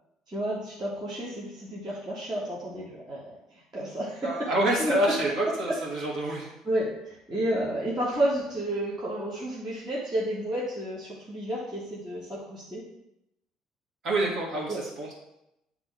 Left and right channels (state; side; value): normal; both; correlation 0.66